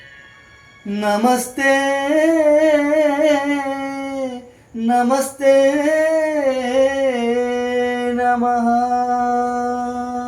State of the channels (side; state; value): both; identical; correlation 1.00